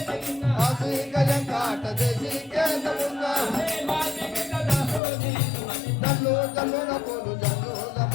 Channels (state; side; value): drops out; right; at 5.0 s